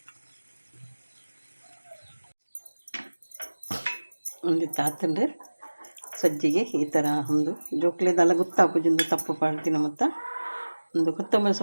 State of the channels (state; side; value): inverted; both; correlation -1.00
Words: ಒಂದು ತಾತಂಡು ಸಜ್ಜಿಗೆ ಈ ಥರ ಒಂದು ಜೋಕ್ಲೆದೆಲ್ಲ ಗೊತ್ತಾಪುಜೊಂದು ತಪ್ಪು ಪಾಡ್ತಿನ ಮತ್ತು ಒಂದು ಕೊತ್ತಂಬರಿ